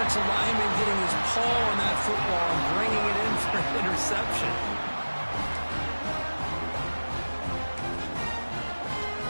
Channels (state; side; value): inverted; both; correlation -1.00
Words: lineman getting his paw on that football and bringing it in for an interception?